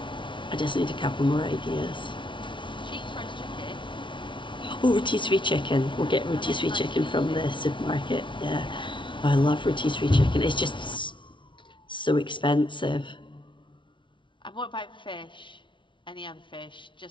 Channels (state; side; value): late; right; 0.24 ms